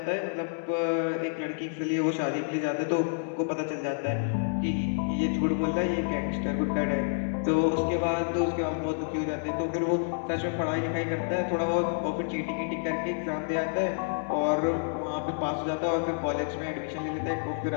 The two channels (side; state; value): right; silent; digital silence